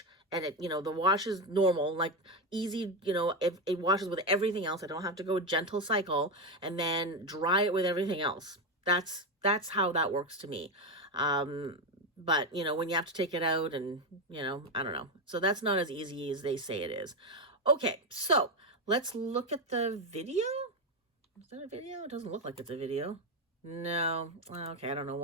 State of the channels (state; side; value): normal; both; correlation 0.11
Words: and the wash is normal, like easy, it washes with everything else. I don't have to go gentle cycle and then dry it with everything else. That's how that works to me. But when you have to take it out, and I don't know. So that's not as easy as they say it is. Okay, so let's look at the video. Is that a video? It doesn't look like it's a video. No. Okay, I don't know